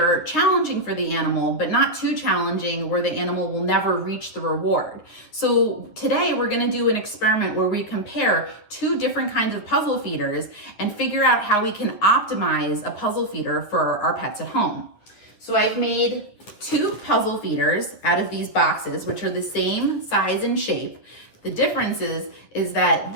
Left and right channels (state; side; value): late; right; 9.9 ms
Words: challenging for the animal, but not too challenging where the animal will never reach the reward. So today we're going to do an experiment where we compare two different kinds of puzzle feeders and figure out how we can optimize a puzzle feeder for our pets at home. So I've made two puzzle feeders out of these boxes, which are the same size and shape. The difference is that